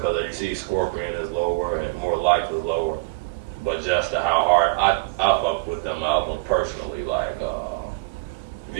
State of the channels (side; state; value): left; quieter; 28.1 dB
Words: because you see Scorpion is lower and More Life is lower, but just how hard I fuck with them albums personally. Like